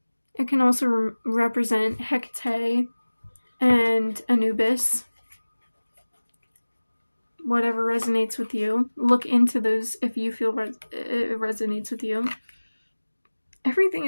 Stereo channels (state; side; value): inverted; both; correlation -1.00